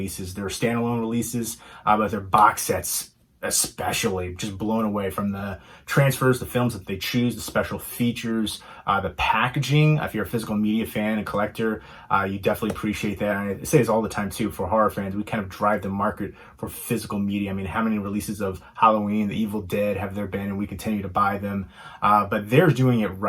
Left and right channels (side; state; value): both; identical; correlation 1.00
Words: Their standalone releases, but their box sets especially, just blown away from the transfers, the films that they choose, the special features, the packaging. If you're a physical media fan and collector, you definitely appreciate that. And I say this all the time too, for horror fans, we kind of drive the market for physical media. I mean, how many releases of Halloween, The Evil Dead have there been, and we continue to buy them, but they're doing it